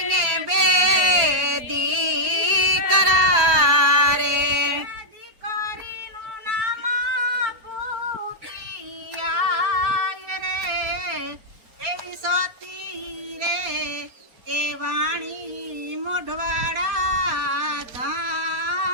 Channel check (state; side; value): late; left; 4.3 ms